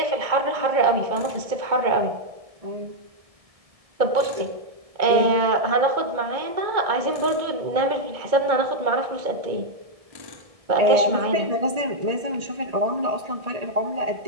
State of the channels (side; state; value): left; late; 1.7 ms